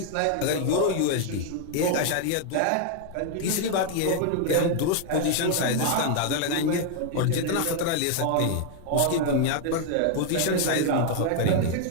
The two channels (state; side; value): different; both; correlation 0.00